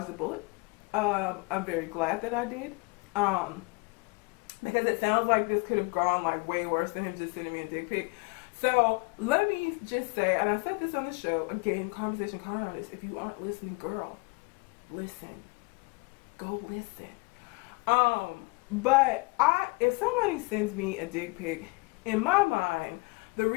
the bullet. I'm very glad that I did. Because it sounds like this could have gone like way worse than him just sending me a dick pic. So let me just say, and I said this on the show, again, Conversation Card Artist, if you aren't listening, girl, listen. Go listen. But if somebody sends me a dick pic, in my mind, the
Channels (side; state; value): right; quieter; 30.7 dB